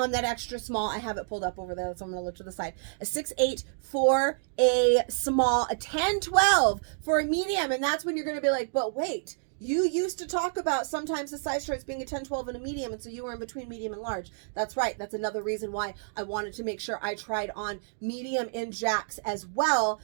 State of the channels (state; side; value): silent; left; digital silence